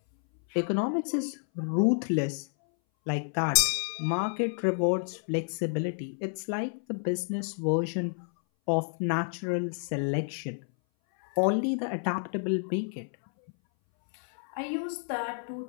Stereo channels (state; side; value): silent; right; 58 dB below the other